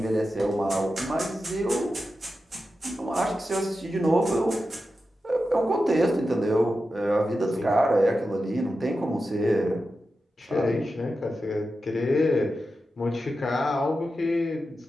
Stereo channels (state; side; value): normal; both; correlation 0.91